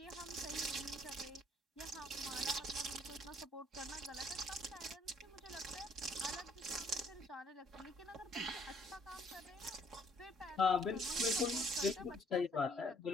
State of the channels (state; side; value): normal; both; correlation 0.63